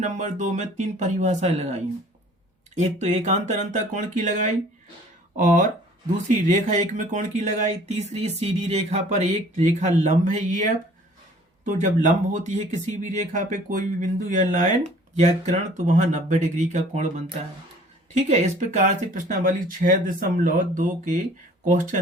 नंबर 2 में 3 परिभाषाएं लगाई हैं। एक तो एकांतर अंतः कोण की लगाई, और दूसरी रेखा युग्म कोण की लगाई, तीसरी सीधी रेखा पर एक रेखा लंब है EF। तो जब लंब होती है किसी भी रेखा पे कोई भी बिंदु या लाइन या किरण, तो वहां 90 डिग्री का कोण बनता है। ठीक है, इस प्रकार से प्रश्नावली 6.2 के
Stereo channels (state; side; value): normal; both; correlation 0.52